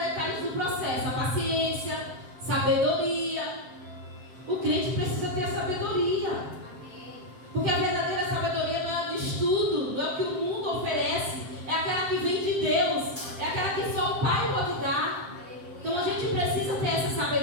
do processo. A paciência, sabedoria. O crente precisa ter a sabedoria. Porque a verdadeira sabedoria não é de estudo, não é o que o mundo oferece. É aquela que vem de Deus. É aquela que só o Pai pode dar. Então a gente precisa ter essa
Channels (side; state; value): left; late; 7.6 ms